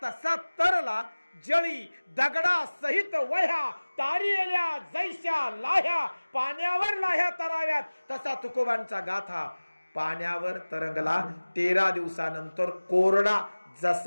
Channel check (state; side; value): inverted; both; correlation -1.00